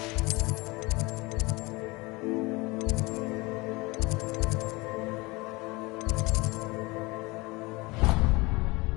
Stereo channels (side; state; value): right; quieter; 24.2 dB